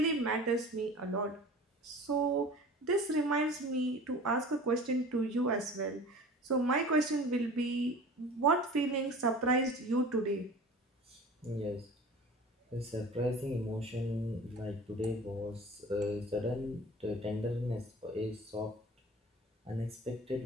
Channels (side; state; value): both; normal; correlation 0.40